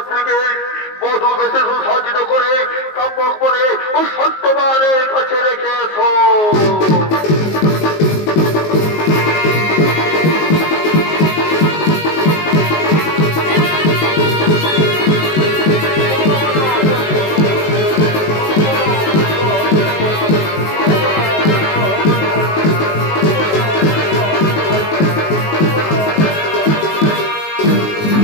বধূ বেশে সুসজ্জিত করে সম্পর্ক করে ও সত্যবানের কাছে রেখে এসো।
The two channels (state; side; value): late; right; 19 ms